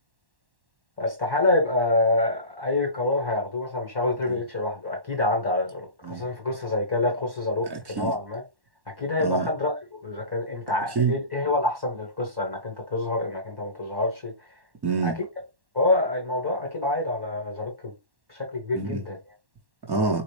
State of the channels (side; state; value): left; late; 1.1 ms